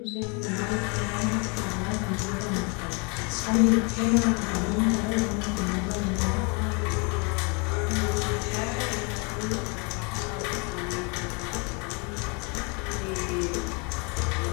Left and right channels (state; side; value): quieter; right; 32.6 dB